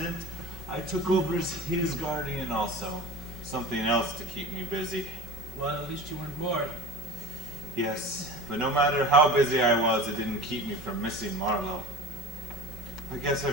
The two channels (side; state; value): both; normal; correlation 0.34